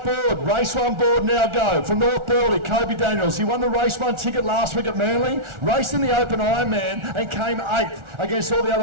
board, race one board now go. From North Burleigh, Kobe Daniels. He won the race one ticket last week at Manly, raced in the Open Ironman and came 8th against all the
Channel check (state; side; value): late; left; 1.4 ms